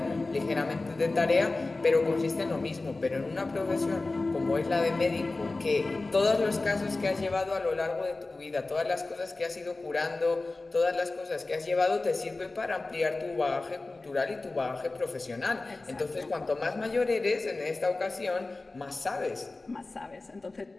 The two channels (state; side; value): quieter; right; 3.3 dB